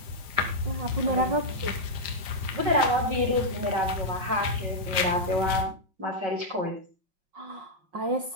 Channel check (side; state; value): left; late; 5.0 ms